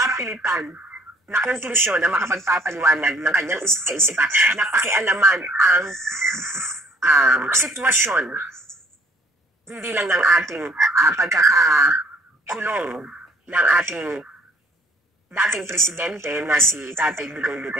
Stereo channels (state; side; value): normal; both; correlation 0.58